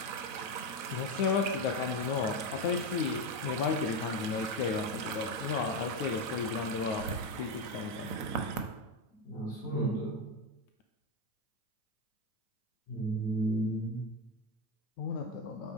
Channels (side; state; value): right; late; 8.6 ms